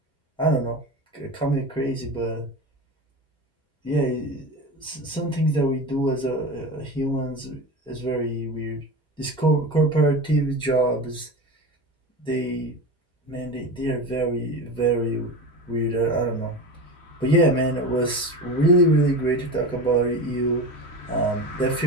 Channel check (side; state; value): both; normal; correlation 0.26